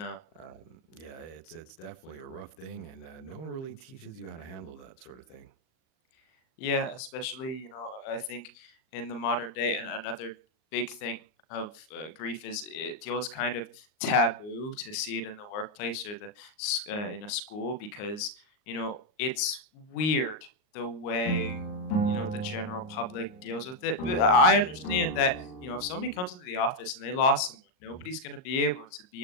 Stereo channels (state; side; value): late; right; 38 ms